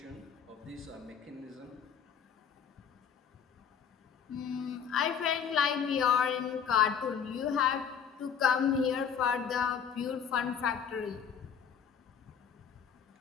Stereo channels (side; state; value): right; quieter; 7.5 dB